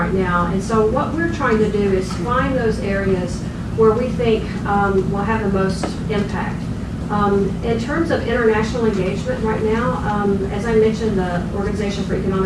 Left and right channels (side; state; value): both; identical; correlation 1.00